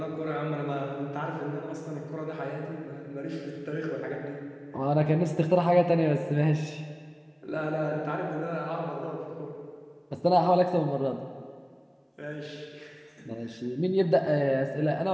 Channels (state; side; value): identical; both; correlation 1.00